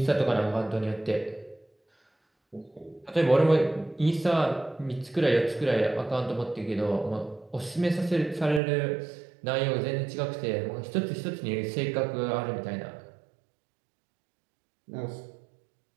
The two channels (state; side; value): drops out; left; at 8.6 s